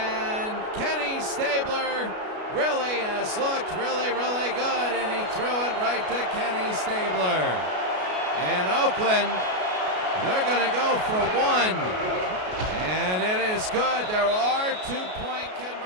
Kenny Stabler really has looked really, really good, and he threw it right to Kenny Stabler. And Oakland, they're going to go for one. And it is good. There are 2-point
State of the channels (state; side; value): late; left; 33 ms